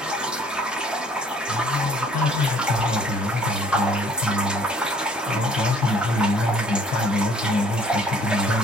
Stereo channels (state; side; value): normal; both; correlation 0.57